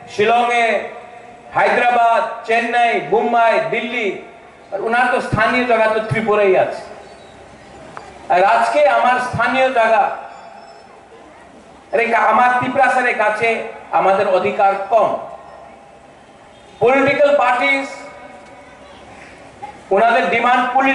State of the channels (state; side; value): identical; both; correlation 1.00